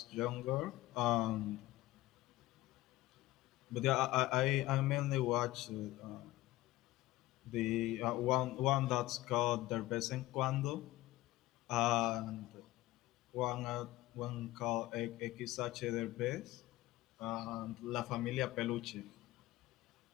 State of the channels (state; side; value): quieter; right; 17.4 dB